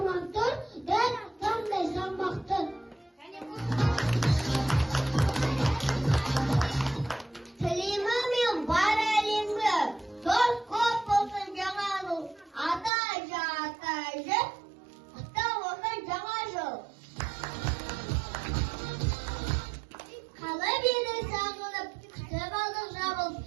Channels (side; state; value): left; drops out; at 12.9 s